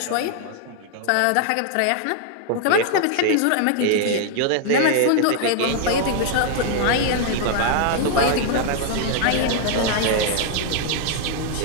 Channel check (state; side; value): different; both; correlation 0.00